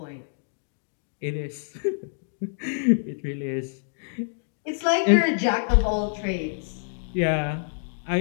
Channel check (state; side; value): silent; right; digital silence